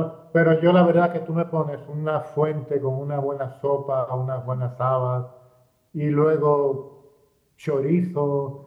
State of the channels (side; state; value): both; identical; correlation 1.00